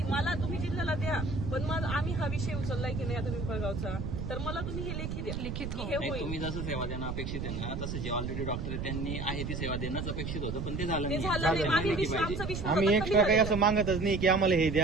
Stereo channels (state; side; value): noise; right; rumble, 4 dB below the sound